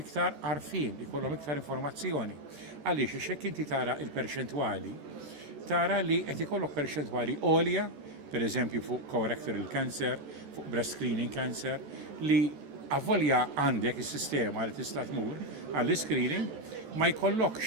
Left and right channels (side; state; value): left; late; 14 ms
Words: iktar għarfien, ikollhom iktar informazzjoni. Għaliex hekk inti tara il-perċentwali tara li qed ikollok perċentwali għolja, pereżempju fuq colorectal cancer, fuq breast screening cancer, li avvolja għandek is-sistema li tista' tmur għall-screening ma jkollokx